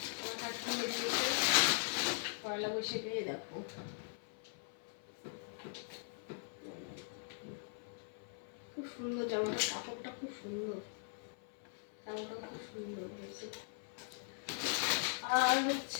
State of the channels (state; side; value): silent; right; 51 dB below the other